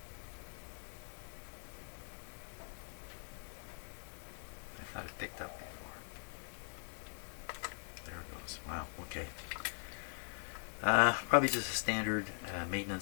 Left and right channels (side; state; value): right; silent; digital silence